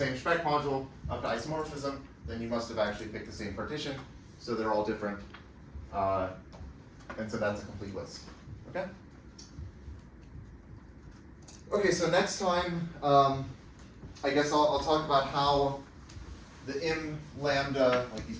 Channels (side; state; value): both; identical; correlation 1.00